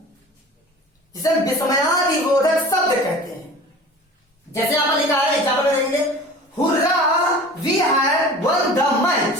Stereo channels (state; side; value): normal; both; correlation 0.40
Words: जिसे विस्मयादिबोधक शब्द कहते हैं। जैसे यहां पर लिखा है, एग्जाम्पल में देखेंगे, hurrah we have won the match.